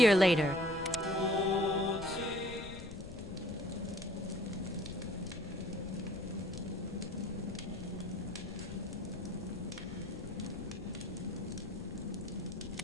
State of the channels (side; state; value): left; noise; rumble, 11 dB below the sound